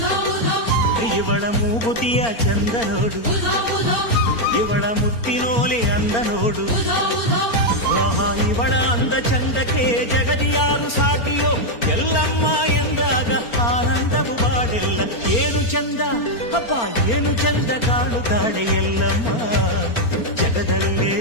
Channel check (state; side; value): late; right; 4.4 ms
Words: ಇವಳ ಮೂಗುತಿಯ ಚಂದ ನೋಡು, ಇವಳ ಮುತ್ತಿನೋಲೆ ಅಂದ ನೋಡು. ಆಹಾ, ಇವಳ ಅಂದ ಚಂದಕ್ಕೆ ಜಗದಿಯಾರು ಸಾಟಿಯೋ, ಎಲ್ಲಮ್ಮ ಎಂದಾಗ ಆನಂದವು ಬಾಡೆಲ್ಲ. ಏನು ಚಂದ ಅಪ್ಪ, ಏನು ಚಂದ ಕಾಣುತ್ತಾಳೆ ಎಲ್ಲಮ್ಮ, ಜಗದಲ್ಲೇ